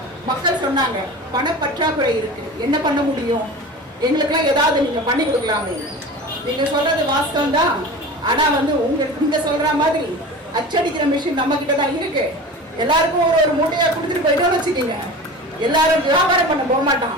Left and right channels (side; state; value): both; normal; correlation 0.34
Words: மக்கள் சொன்னாங்க, பணப்பற்றாக்குறை இருக்கு, என்ன பண்ண முடியும், எங்களுக்கெல்லாம் ஏதாவது நீங்க பண்ணி கொடுக்கலாமே. நீங்க சொல்றது வாஸ்தவம் தான். ஆனா உங்களுக்கு நீங்க சொல்ற மாதிரி அச்சடிக்கிற மிஷின் நம்ம கிட்ட தான் இருக்கு. எல்லாருக்கும் ஒரு மூட்டையா கொடுத்துட்டு போயிட்டோம்னு வச்சுக்கீங்க, எல்லாரும் வியாபாரம் பண்ண போக